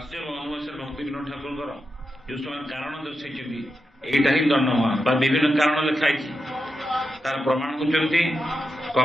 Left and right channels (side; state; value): both; normal; correlation 0.88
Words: ଅନୁବାସରେ ଭକ୍ତି ବିନୋଦ ଠାକୁରଙ୍କର ଯୋଉ ସେମାନେ କାରଣ ଦର୍ଶାଇଛନ୍ତି ଏଇଟା ହିଁ ଦଣ୍ଡମା ବା ବିଭିନ୍ନ କାରଣ ଲେଖା ହେଇଛି ତାର ପ୍ରମାଣ କରୁଛନ୍ତି